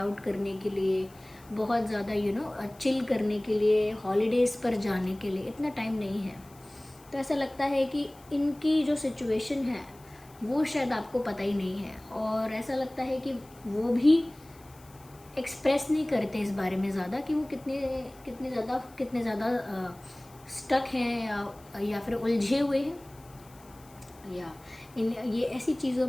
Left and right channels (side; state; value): left; noise; hiss, 25 dB below the sound